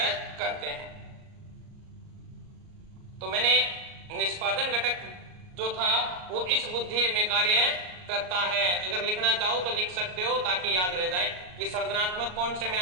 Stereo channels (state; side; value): late; left; 38 ms